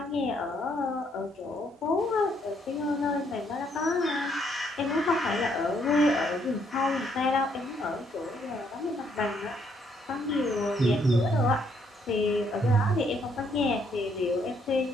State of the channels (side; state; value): both; normal; correlation 0.71